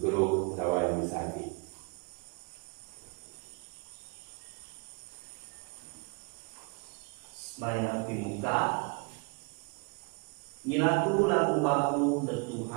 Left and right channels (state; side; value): quieter; left; 33.6 dB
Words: guru dawa yang sadi sembahyang di muka nyilaku laku baku dan